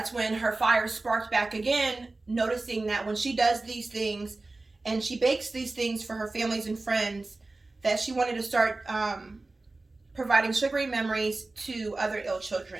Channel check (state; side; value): quieter; left; 3.2 dB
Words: when her fire sparked back again, noticing that when she does these things and she bakes these things for her families and friends, that she wanted to start providing sugary memories to other ill